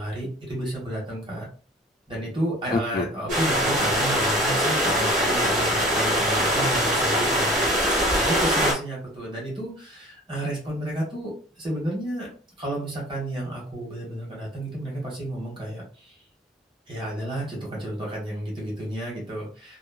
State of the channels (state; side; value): normal; both; correlation 0.45